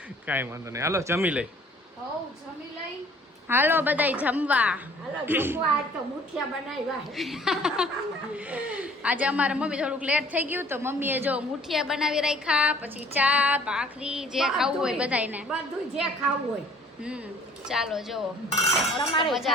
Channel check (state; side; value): normal; both; correlation 0.55